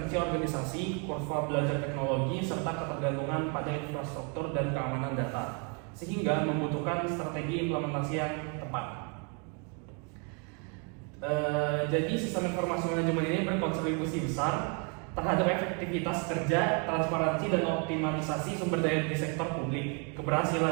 organisasi, kurva belajar teknologi, serta ketergantungan pada infrastruktur dan keamanan data, sehingga membutuhkan strategi implementasi yang tepat. Jadi sistem informasi manajemen ini berkontribusi besar terhadap efektivitas kerja, transparansi, dan optimalisasi sumber daya di sektor publik.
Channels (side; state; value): left; quieter; 36.7 dB